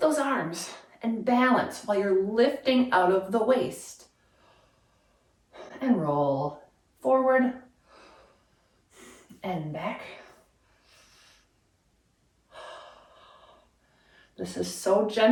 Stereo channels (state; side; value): identical; both; correlation 1.00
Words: those arms and balance while you're lifting out of the waist. And roll forward and back. This is so